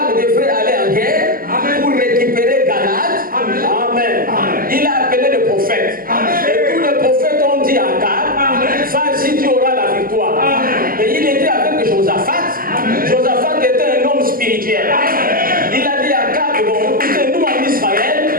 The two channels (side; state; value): left; late; 0.42 ms